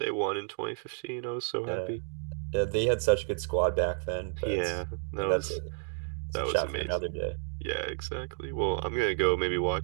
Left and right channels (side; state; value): left; silent; 57 dB below the other